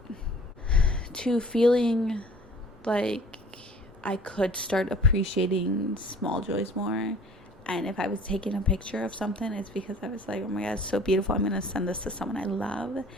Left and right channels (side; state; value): both; normal; correlation 0.49